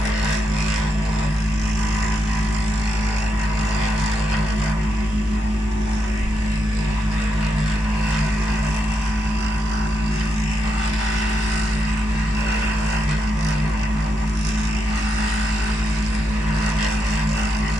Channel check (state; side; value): normal; both; correlation 0.82